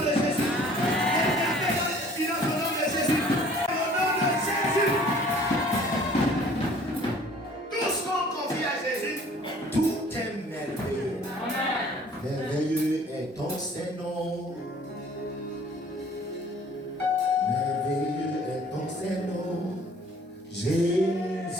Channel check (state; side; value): normal; both; correlation 0.53